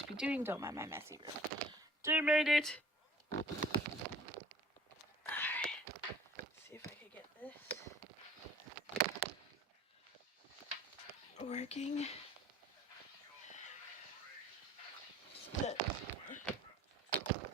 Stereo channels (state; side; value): normal; both; correlation 0.50